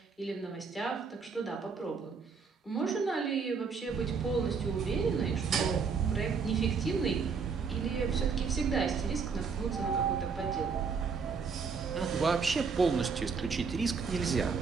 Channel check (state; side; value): quieter; left; 5.5 dB